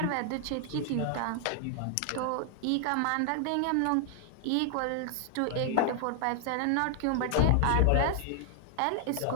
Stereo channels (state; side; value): different; both; correlation 0.00